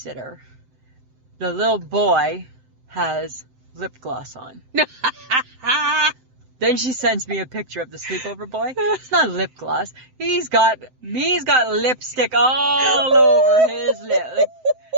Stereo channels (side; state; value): left; late; 7.8 ms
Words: The little boy has lip gloss on. Then she sends me a picture of the sleepover boy. It's not lip gloss. He's got lipstick all over his lip.